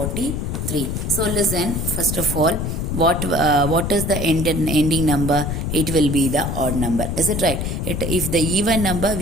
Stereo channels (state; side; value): noise; left; rumble, 2 dB below the sound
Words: So listen, first of all, what is the ending number? It will be the odd number. Is it right? If the even number,